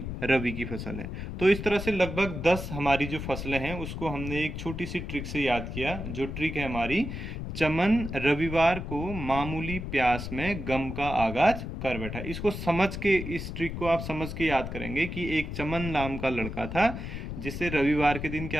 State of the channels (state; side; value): noise; left; rumble, 6 dB below the sound